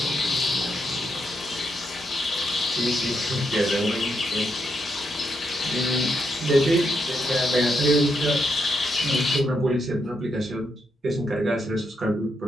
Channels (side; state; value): both; normal; correlation 0.80